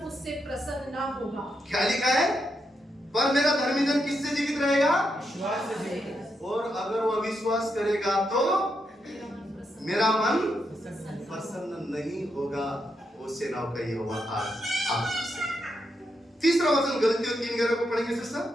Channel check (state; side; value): normal; both; correlation 0.82